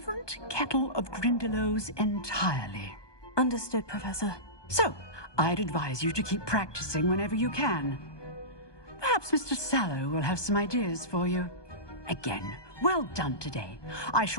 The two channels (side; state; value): right; late; 1.2 ms